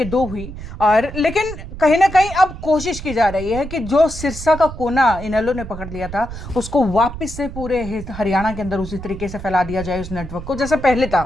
2 हुई। और लेकिन कहीं ना कहीं अब कोशिश की जा रही है कि जो सिरसा का कोना इनेलो ने पकड़ लिया था उसको वापस से पूरे हरियाणा के अंदर उसी तरीके से फैला दिया जाए उस नेटवर्क को, जैसे पहले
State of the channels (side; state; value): right; noise; rumble, 11 dB below the sound